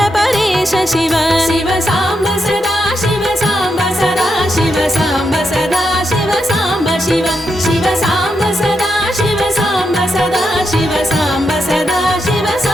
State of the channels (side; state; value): both; normal; correlation 0.83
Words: परेश शिव शिव साम्ब सदा शिव साम्ब सदा शिव साम्ब सदा शिव साम्ब शिव शिव साम्ब सदा शिव साम्ब सदा शिव साम्ब सदा शिव